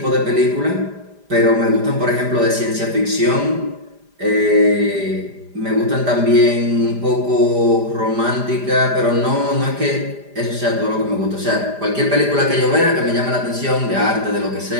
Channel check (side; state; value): left; late; 5.0 ms